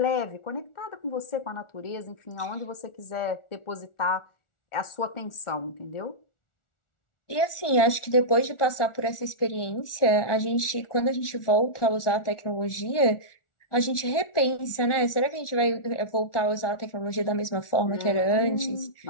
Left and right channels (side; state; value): right; late; 1.4 ms